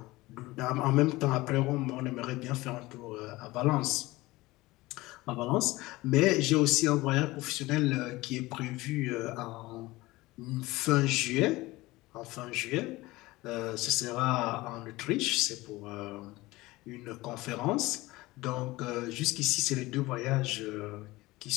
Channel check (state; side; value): quieter; right; 19.9 dB